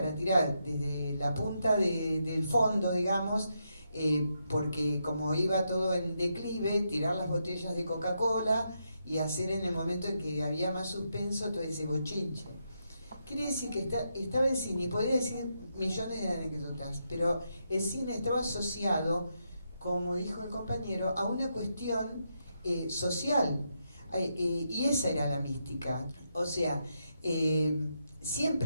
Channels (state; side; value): inverted; both; correlation -0.82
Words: tirar desde la punta del fondo, digamos, porque como iba todo en declive, tirar las botellas de Coca-Cola y hacer en el momento en que había más suspenso todo ese bochinche. Quiere decir que estaba el cine, y podría decir millones de anécdotas, pero el cine estaba asociado, como dijo el compañero, a una cuestión social, y esa era la mística. O sea,